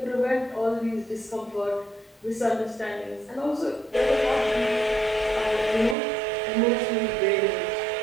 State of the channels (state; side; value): drops out; left; at 6.0 s